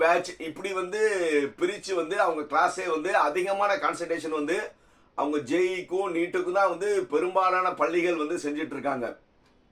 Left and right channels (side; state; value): both; identical; correlation 1.00